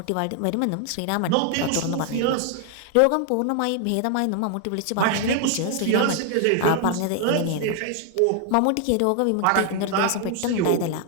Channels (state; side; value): different; both; correlation 0.00